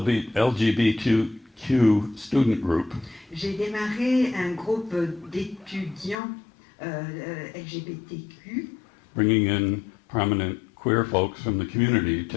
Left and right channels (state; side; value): drops out; right; at 6.2 s